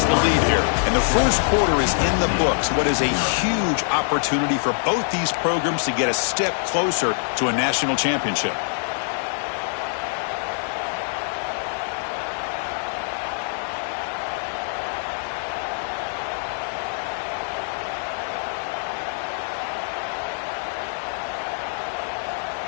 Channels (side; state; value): right; silent; 56 dB below the other